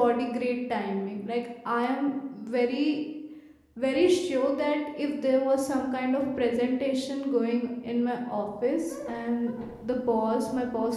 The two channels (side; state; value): both; identical; correlation 1.00